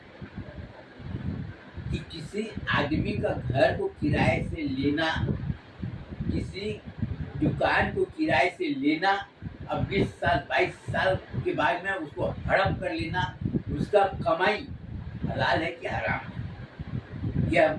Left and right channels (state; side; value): identical; both; correlation 1.00